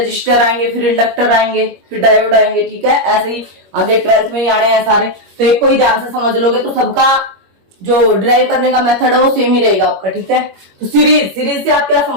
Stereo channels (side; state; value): left; late; 21 ms